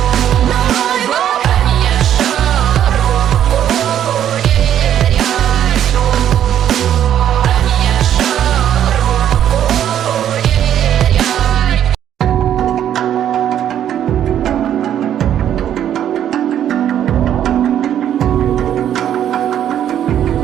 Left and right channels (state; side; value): quieter; left; 10.3 dB